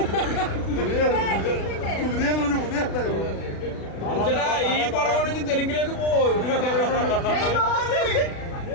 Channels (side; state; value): right; late; 36 ms